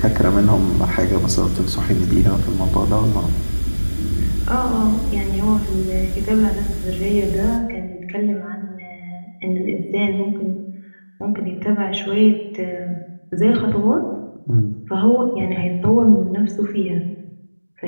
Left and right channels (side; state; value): both; inverted; correlation -1.00